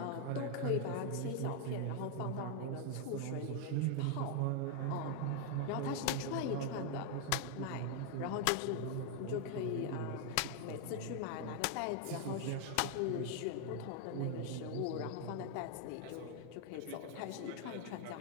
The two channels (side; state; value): both; different; correlation 0.00